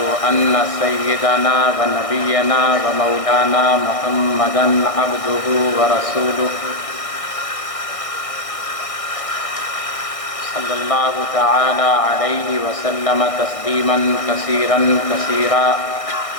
أن سيدنا ونبينا ومولانا محمدا عبده ورسوله صلى الله تعالى عليه وسلم تسليما كثيرا كثيرا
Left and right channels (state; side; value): late; right; 1.6 ms